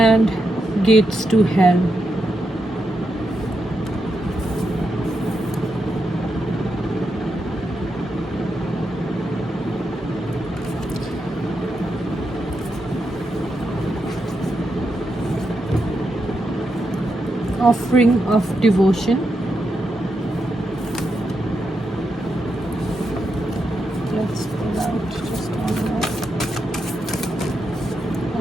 gates to hell. Offering of devotion. Let's pull out just one more.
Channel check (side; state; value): both; normal; correlation 0.85